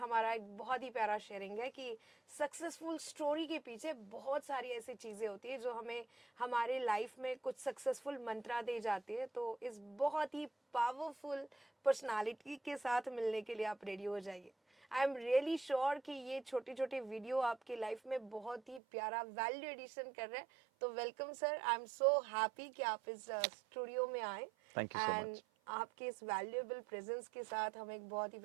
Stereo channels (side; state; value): left; drops out; at 18.8 s